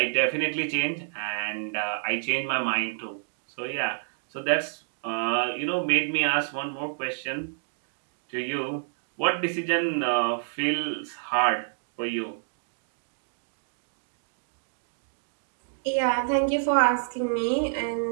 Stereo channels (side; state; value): left; silent; digital silence